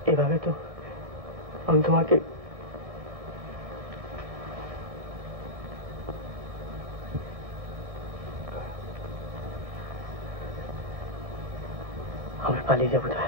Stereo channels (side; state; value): left; late; 1.6 ms